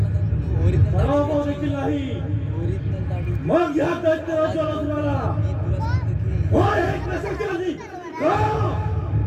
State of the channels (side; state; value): both; identical; correlation 1.00